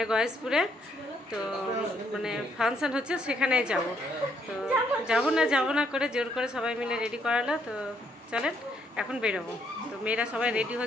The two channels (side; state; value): both; normal; correlation 0.71